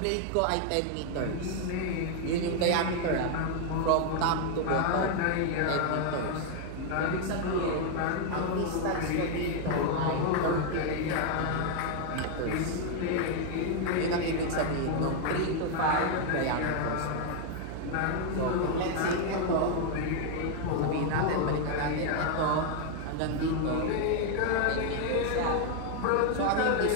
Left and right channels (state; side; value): different; both; correlation 0.00